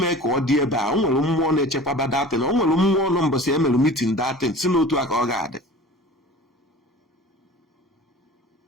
ka ọ dị ebe a. O nwere mmụọ na-echekwaba that thing. O nwere mmụọ nọ mbọsị emelu meeting that thing si n'otu a ka ọ ga-adị.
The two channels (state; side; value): normal; both; correlation 0.41